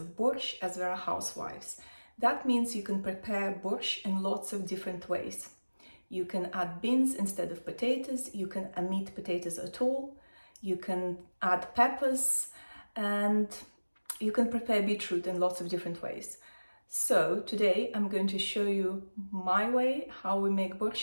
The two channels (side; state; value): both; inverted; correlation -1.00